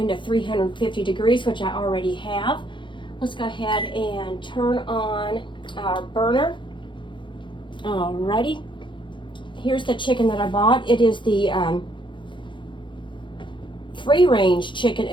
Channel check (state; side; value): late; right; 0.23 ms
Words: to 350 degrees, which I already have. Let's go ahead and turn on our burner. Alrighty. Here's the chicken that I bought. It is the free range chicken